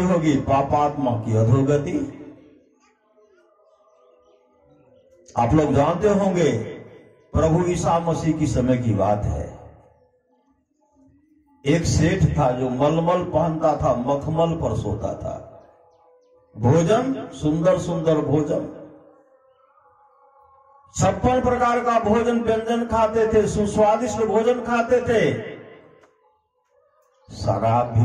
होगी, पापात्मा की अधोगति। आप लोग जानते होंगे प्रभु ईसा मसीह की समय की बात है। एक सेठ था जो मलमल पहनता था, मखमल पर सोता था। भोजन सुंदर सुंदर भोजन, 56 प्रकार का भोजन व्यंजन खाते थे, सुस्वादिष्ट भोजन खाते थे, शराब भी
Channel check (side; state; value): both; identical; correlation 1.00